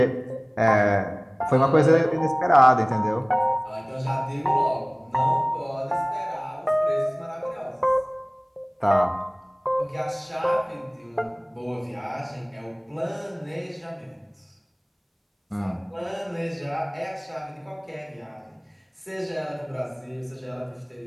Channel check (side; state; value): both; identical; correlation 1.00